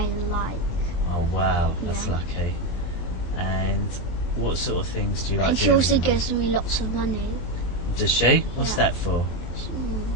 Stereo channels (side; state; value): right; late; 23 ms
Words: like. Oh wow, that's Yeah. lucky. And what sort of things do you like? And she doing also with your gives me lots of money. mum? Does she? What's Yeah. that for?